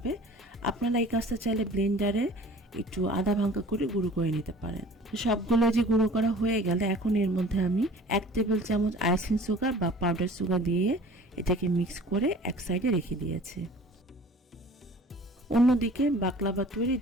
আপনারা এই কাজটা চাইলে ব্লেন্ডারে একটু আধা ভাঙ্গা করে গুঁড়ো করে নিতে পারেন। সবগুলো যে গুঁড়ো করা হয়ে গেলে এখন এর মধ্যে আমি 1 টেবিল চামচ আইসিং সুগার বা পাউডার সুগার দিয়ে এটাকে মিক্স করে এক সাইডে রেখে দিয়েছি। অন্যদিকে বাকলাভা তৈরির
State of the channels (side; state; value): both; normal; correlation 0.47